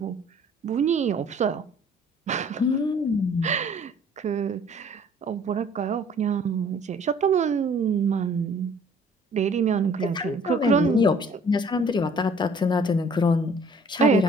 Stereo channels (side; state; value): both; normal; correlation 0.54